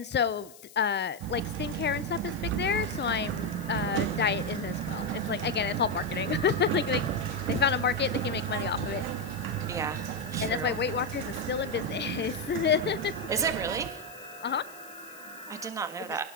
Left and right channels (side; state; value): left; noise; hiss, 20 dB below the sound